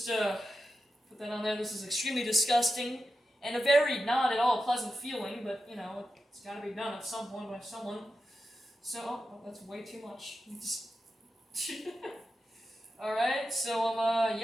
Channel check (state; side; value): normal; both; correlation 0.90